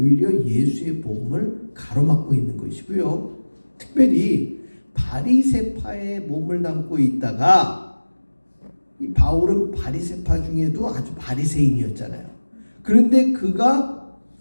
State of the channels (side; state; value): both; inverted; correlation -1.00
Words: 예수의 복음을 가로막고 있는 것이고요. 특별히 바리새파의 몸을 담고 있다가 이 바울은 바리새파 중에도 아주 바리새인이었잖아요. 그런데 그가